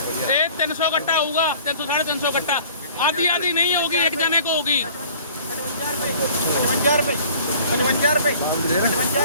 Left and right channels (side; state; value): both; inverted; correlation -0.49